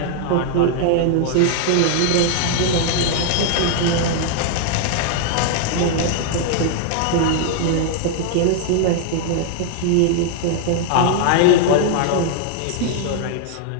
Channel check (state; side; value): different; both; correlation 0.00